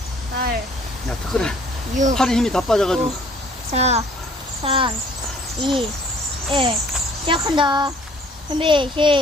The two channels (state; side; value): normal; both; correlation 0.57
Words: 8, 야, 덕거리. 6, 팔에 힘이 다 빠져가지고. 5, 4, 3, 2, 1. 시작한다. 준비,